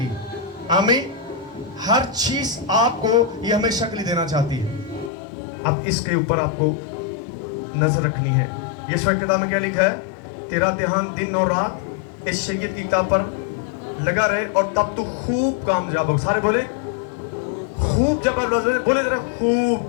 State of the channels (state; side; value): drops out; right; at 5.1 s